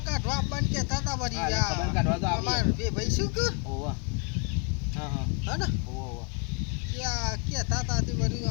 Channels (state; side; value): quieter; right; 36.6 dB